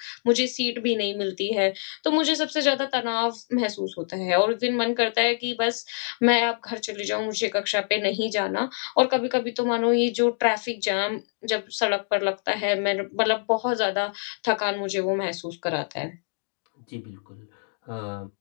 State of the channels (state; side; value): silent; right; digital silence